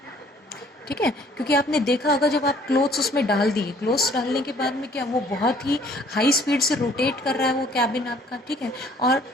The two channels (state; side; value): normal; both; correlation 0.58